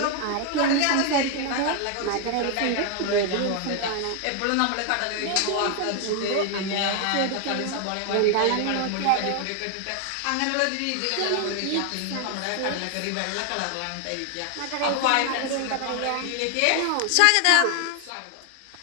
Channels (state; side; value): different; both; correlation 0.00